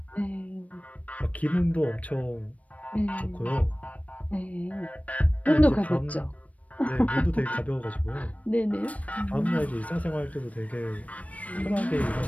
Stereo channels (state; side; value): late; right; 0.068 ms